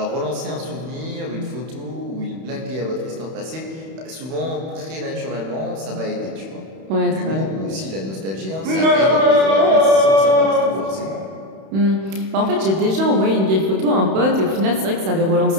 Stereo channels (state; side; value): late; left; 31 ms